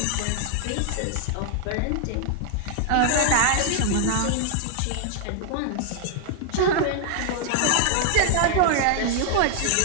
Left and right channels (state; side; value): different; both; correlation 0.00